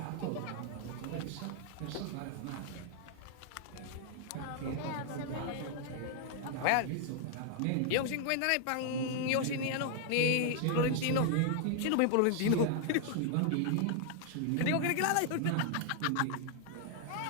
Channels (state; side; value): different; both; correlation 0.00